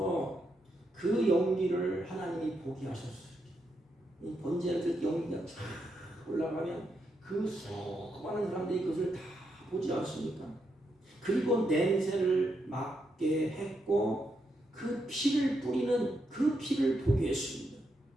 그 연기를 하나님이 보게 하셨어요. 이 번제를 드릴 때 연기가 쫙 올라가면 그 수많은 사람들이 그것을 다 보지 않습니까? 그리고 냄새를 맡게 했고 그 피를 뿌리는 그 피를 보게 했습니다.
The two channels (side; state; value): both; normal; correlation 0.82